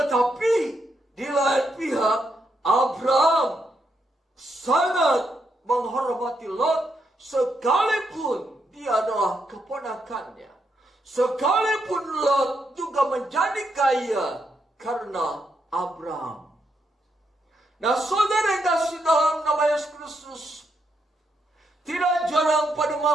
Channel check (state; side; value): normal; both; correlation 0.80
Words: di lain pihak, Abraham sangat menghormati Lot sekalipun dia adalah keponakannya. Sekalipun Lot juga menjadi kaya karena Abraham. Nah, saudara yang kasih dalam nama Yesus Kristus, tidak jarang pada